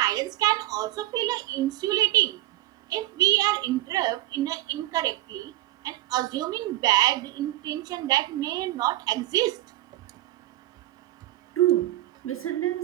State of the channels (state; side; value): quieter; left; 16.0 dB